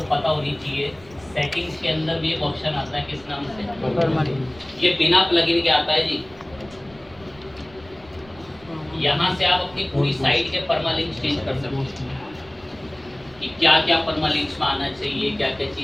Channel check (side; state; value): right; noise; rumble, 24 dB below the sound